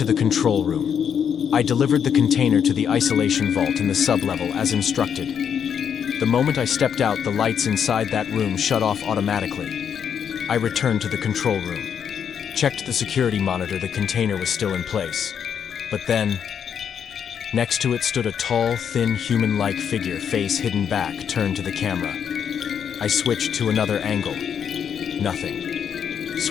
the control room. I delivered the container to the isolation vault in the sublevel as instructed. The moment I stepped out, the lights inside that room shut off automatically. I returned to the control room. Checked the security monitor. The container was still in place. But then, next to it stood a tall, thin, human-like figure, face hidden back, turned to the camera. I switched to another angle. Nothing.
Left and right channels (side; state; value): right; quieter; 7.9 dB